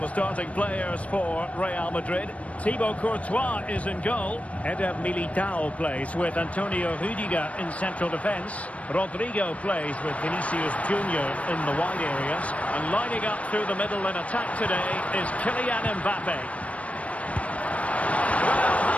starting players for Real Madrid. Thibaut Courtois is in goal. Eder Militao plays with Antonio Rüdiger in central defence. Rodrigo plays with Vinicius Junior in the wide areas. And lining up through the middle in attack today is Kylian Mbappe. Well,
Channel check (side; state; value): right; late; 0.065 ms